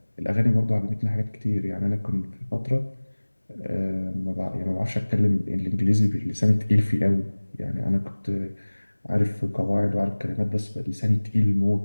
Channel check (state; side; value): inverted; both; correlation -1.00